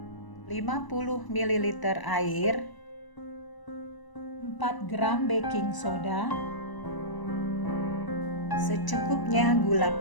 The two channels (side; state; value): right; late; 1.0 ms